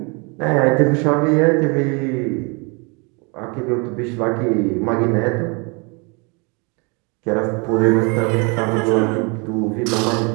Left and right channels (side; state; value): left; quieter; 31.2 dB